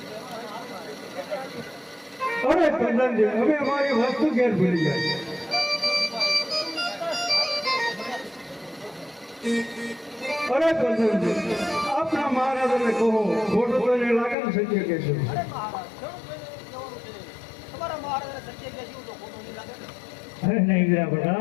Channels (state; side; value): drops out; right; at 14.4 s